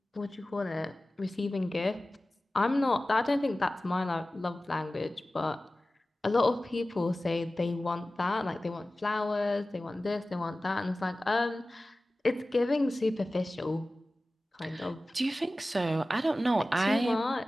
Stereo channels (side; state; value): both; normal; correlation 0.96